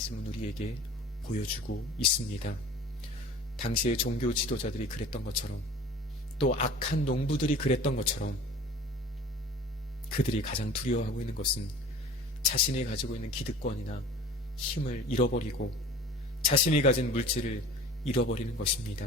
우리에게 보여주고 있습니다. 당시의 종교 지도자들이 그랬던 것처럼 또 악한 농부들이 그랬던 것처럼 그들이 가장 두려워하고 있는 것은 자신이 가지고 있는 기득권이나 힘을 잃어버리고 자신이 가진 물질을 잃어버리는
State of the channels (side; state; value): both; normal; correlation 0.43